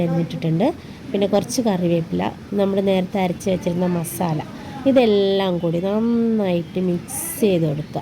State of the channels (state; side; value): identical; both; correlation 1.00